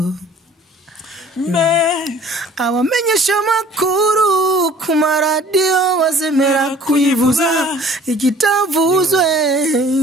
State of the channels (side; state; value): both; normal; correlation 0.51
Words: abamenyesha amakuru ku maradiyo bazemera kuyivuza ikitavuzwe